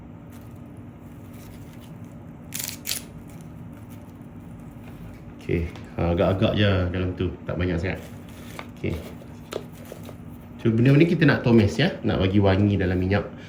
Okey, agak-agak je dalam tu, tak banyak sangat. Okey. So benda ni kita nak tumis ya, nak bagi wangi dalam minyak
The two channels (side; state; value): both; identical; correlation 1.00